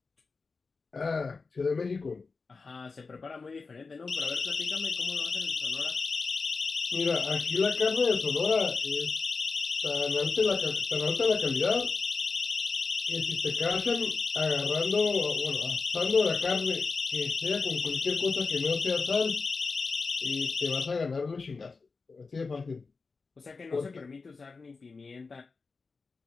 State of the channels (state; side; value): quieter; right; 4.3 dB